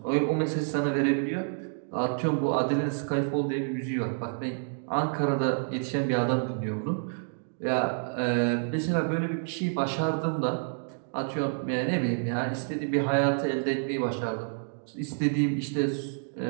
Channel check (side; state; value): left; silent; digital silence